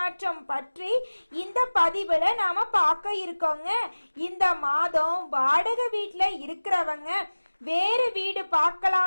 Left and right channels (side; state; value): both; inverted; correlation -1.00